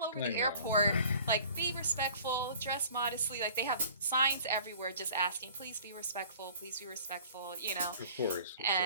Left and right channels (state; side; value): inverted; both; correlation -0.48